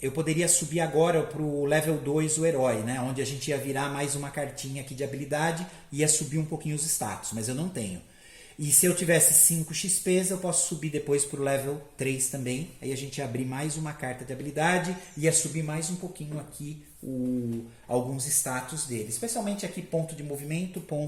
poderia subir agora para o level 2 o herói, né? Onde a gente ia virar mais uma cartinha aqui de habilidade e ia subir um pouquinho os status, mas eu não tenho. E se eu tivesse 5 XP, eu posso subir depois para o level 3 também. Aí a gente ia abrir mais uma carta de habilidade e ia subir mais um pouquinho aqui alguns status dele. Especialmente aqui ponto de movimento,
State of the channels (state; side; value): identical; both; correlation 1.00